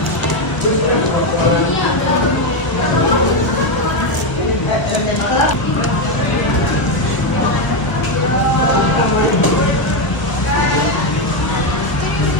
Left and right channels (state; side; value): late; right; 1.2 ms